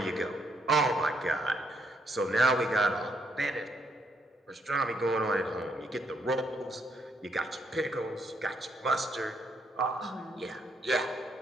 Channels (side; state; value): both; normal; correlation 0.73